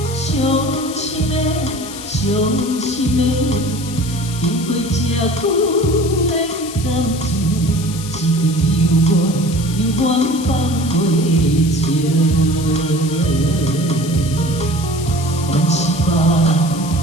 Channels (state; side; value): noise; left; hiss, 12 dB below the sound